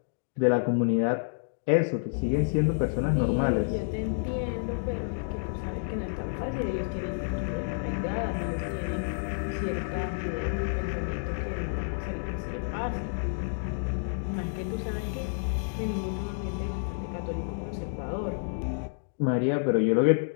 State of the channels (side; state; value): right; silent; digital silence